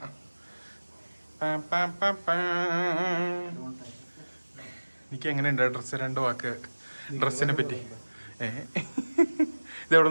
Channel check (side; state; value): both; inverted; correlation -1.00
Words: നിക്ക് എങ്ങനെയുണ്ട് ഡ്രസ്സ്? 2 വാക്ക് ഡ്രസ്സിനെ പറ്റി. ഇതെവിടെ